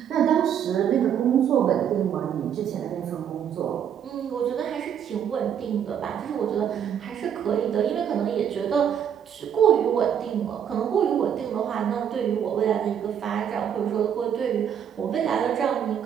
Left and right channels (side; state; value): left; quieter; 8.7 dB